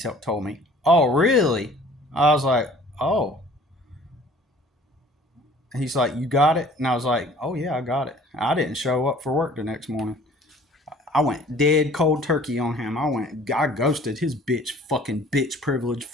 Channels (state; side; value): normal; both; correlation 0.51